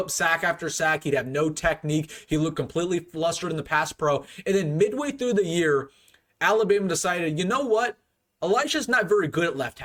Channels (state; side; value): identical; both; correlation 1.00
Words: sack after sack. He'd have no technique. He looked completely flustered in the pass pro. And then midway through the year, Alabama decided, you know what? Elijah's not very good at left